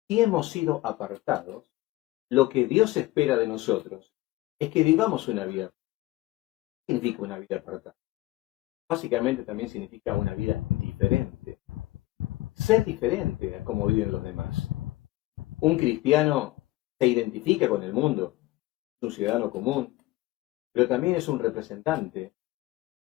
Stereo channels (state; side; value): quieter; right; 18.2 dB